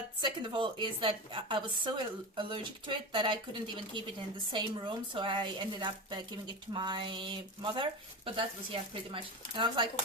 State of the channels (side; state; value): both; normal; correlation 0.24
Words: second of all is that I was so allergic to it that I couldn't even keep it in the same room. So I ended up giving it to my mother. But that was, yeah, pretty much. And I was like,